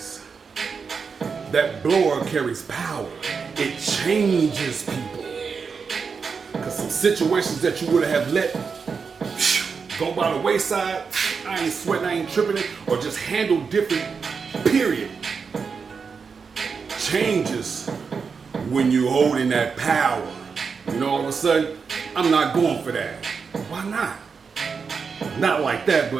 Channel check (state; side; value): quieter; left; 5.5 dB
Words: That blower carries power. It changes people. Because some situations that you would have let go by the wayside, I ain't sweating, I ain't tripping it, or just handle different, period, changes when you're holding that power. All of a sudden, I'm not going for that. Why not? Not like that,